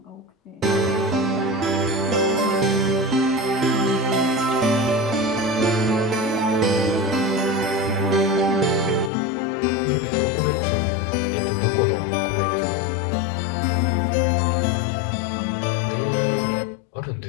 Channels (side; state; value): right; drops out; at 9.1 s